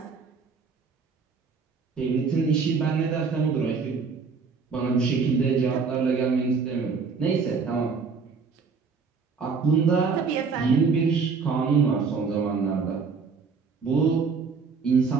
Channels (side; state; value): left; quieter; 5.2 dB